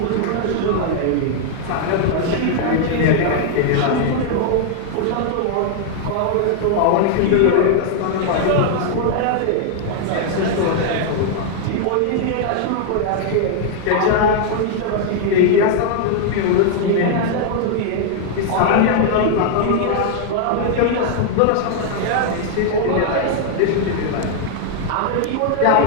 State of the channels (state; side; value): different; both; correlation 0.00